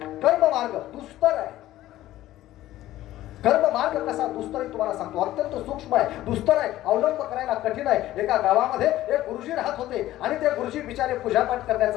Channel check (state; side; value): quieter; right; 14.8 dB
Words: कर्म मार्ग दुस्तर आहे. कर्म मार्ग कसा दुस्तर आहे तुम्हाला सांगतो. अत्यंत सूक्ष्म आहे, दुस्तर आहे, अवलंब करायला कठीण आहे. एका गावामध्ये एक गुरुजी राहत होते आणि ते गुरुजी बिचारे पूजापाठ